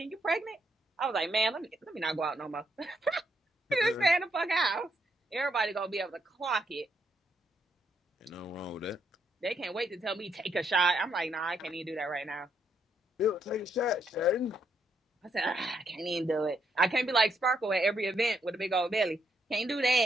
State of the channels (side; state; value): both; normal; correlation 0.76